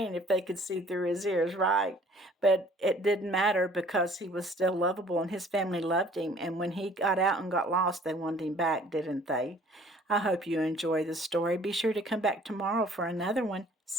if they could see through his ears, right? But it didn't matter because he was still lovable and his family loved him. And when he got out and got lost, they wanted him back, didn't they? I hope you enjoy the story. Be sure to come back tomorrow for another one.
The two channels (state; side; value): normal; both; correlation 0.54